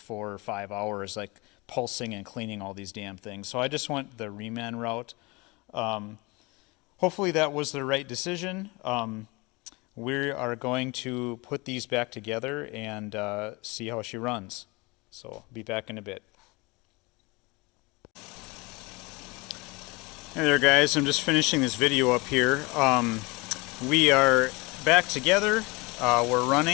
or 5 hours, like pulsing and cleaning all these damn things. So I just went the reman route. Hopefully that was the right decision. We are going to put these back together and see how she runs. So be back in a bit. Hey there guys, I'm just finishing this video up here. We are back together. We're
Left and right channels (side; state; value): right; quieter; 25.7 dB